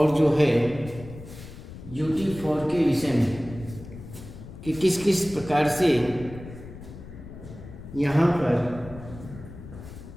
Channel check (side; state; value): left; noise; rumble, 14 dB below the sound